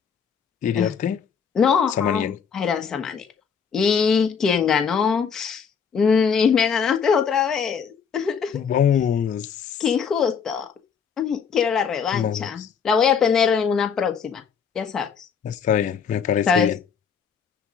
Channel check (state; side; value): quieter; right; 6.6 dB